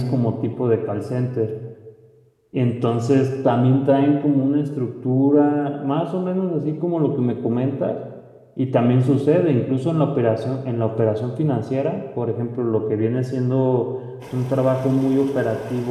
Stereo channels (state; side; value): identical; both; correlation 1.00